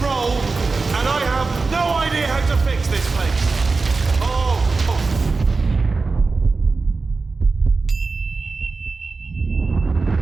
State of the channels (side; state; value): left; quieter; 4.1 dB